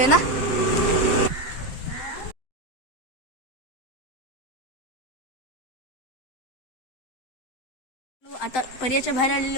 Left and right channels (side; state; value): right; late; 7.8 ms